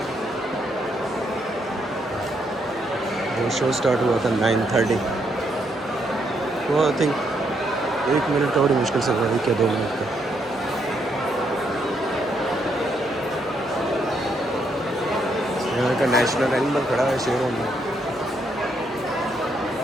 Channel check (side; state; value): both; normal; correlation 0.75